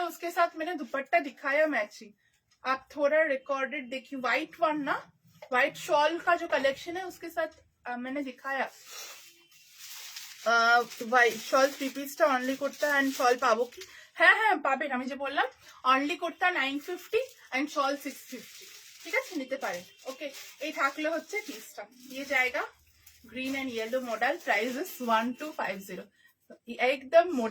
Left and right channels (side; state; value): both; identical; correlation 1.00